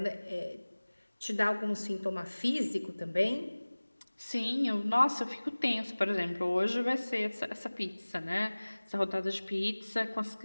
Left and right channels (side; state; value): both; inverted; correlation -1.00